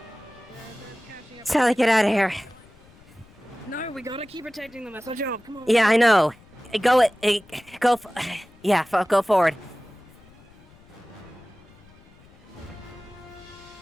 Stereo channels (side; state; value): left; noise; rumble, 26 dB below the sound